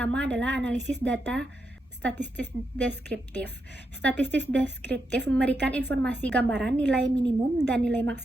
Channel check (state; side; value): normal; both; correlation 0.84